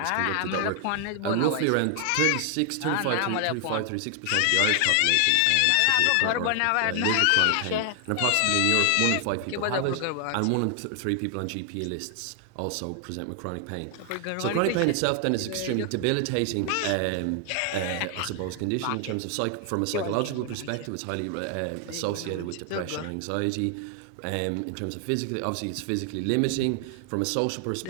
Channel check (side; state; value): both; different; correlation 0.00